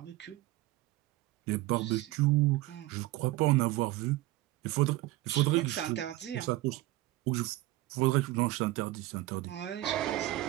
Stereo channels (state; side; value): quieter; left; 17.3 dB